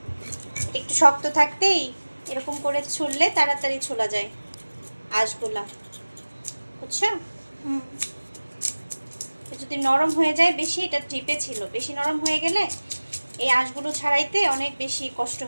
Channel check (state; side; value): inverted; both; correlation -1.00